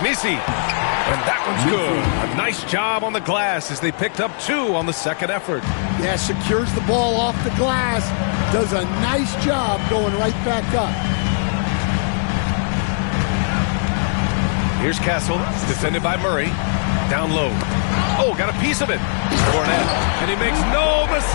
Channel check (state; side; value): silent; right; digital silence